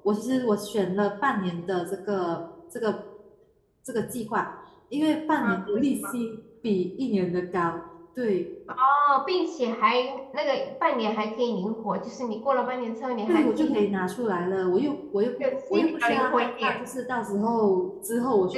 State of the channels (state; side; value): identical; both; correlation 1.00